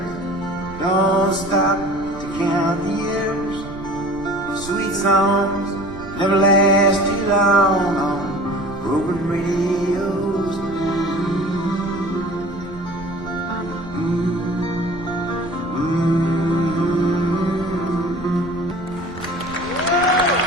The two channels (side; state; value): right; noise; rumble, 16 dB below the sound